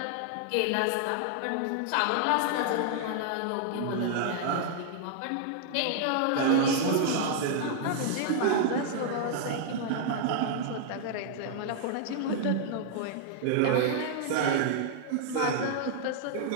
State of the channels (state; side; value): different; both; correlation -0.01